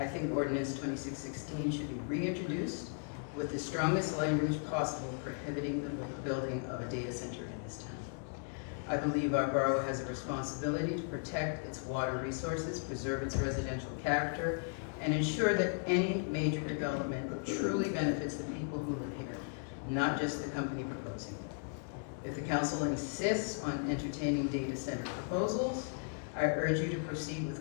I think Ordinance 2616 should be reintroduced with the strongest language possible prohibiting the building of a data center in this town. I believe our borough has a responsibility to protect its water resources, preserve its residential character, and ensure that any major development truly benefits the people who live here, not just the company proposing it. If the council insists on entertaining data center proposals, I urge you to proceed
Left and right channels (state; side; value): silent; right; 54 dB below the other